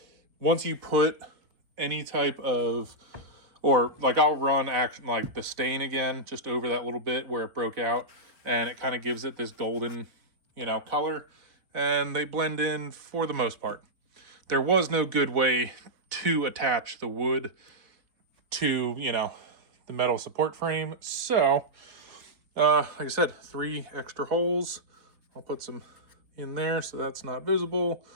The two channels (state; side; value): late; left; 4.1 ms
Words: Once you put any type of, or like I'll run like the stain again, just over that little bit where it broke out, and it kind of gives it this golden, color, and they blend in for the most part. There was no good way to attach the wood to, the metal support frame. So, like I said, 3 extra holes. I'll put some in there so that's not visible.